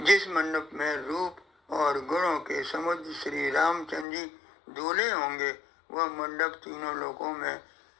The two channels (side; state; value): right; drops out; at 4.0 s